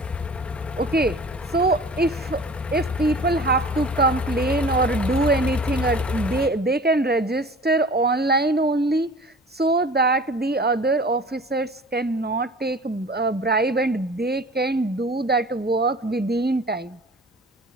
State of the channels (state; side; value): normal; both; correlation 0.42